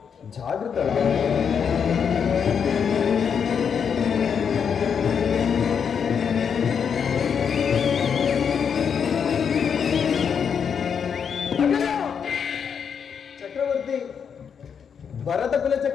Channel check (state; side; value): quieter; right; 7.1 dB